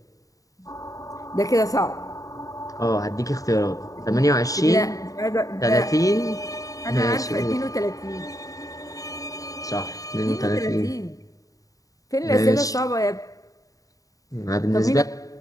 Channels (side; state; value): right; late; 0.17 ms